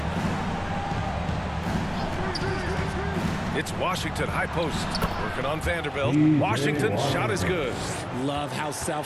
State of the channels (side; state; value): both; identical; correlation 1.00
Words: It's Washington, high post. Working on Vanderbilt. Washington's shot is good. Love how